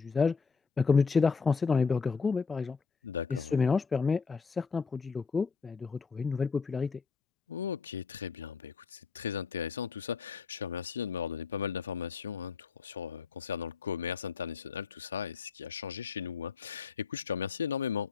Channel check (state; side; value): quieter; right; 5.2 dB